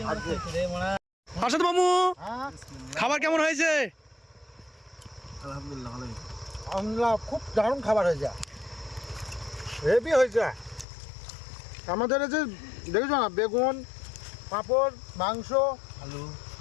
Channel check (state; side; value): drops out; right; at 10.9 s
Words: আরশাদ মামু, খাবার কেমন হয়েছে? আলহামদুলিল্লাহ, খুব দারুণ খাবার হয়েছে, হেভি হয়েছে। আমাদের এই যে দেখেছো না, বেগুন, পাঁপড়, মাংস,